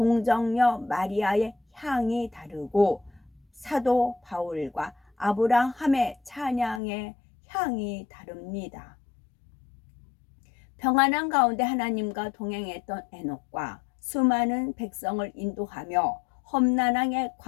마리아의 향이 다르고 사도 바울과 아브라함의 찬양의 향이 다릅니다. 평안한 가운데 하나님과 동행했던 에녹과 수많은 백성을 인도하며 험난하게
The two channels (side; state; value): right; drops out; at 6.8 s